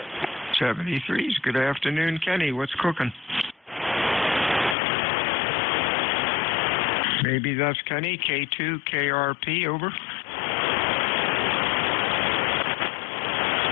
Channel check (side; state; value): right; drops out; at 4.8 s